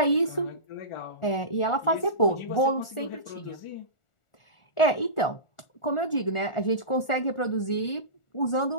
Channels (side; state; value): right; late; 1.4 ms